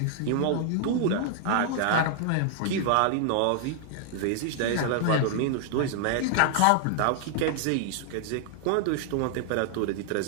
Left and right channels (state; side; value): different; both; correlation 0.00